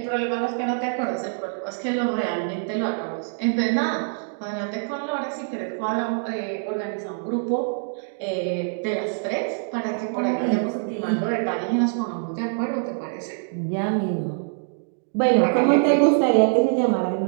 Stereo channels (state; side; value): silent; left; digital silence